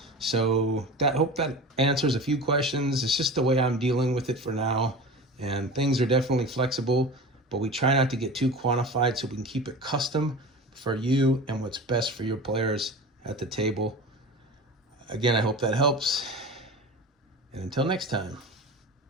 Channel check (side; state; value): both; normal; correlation 0.33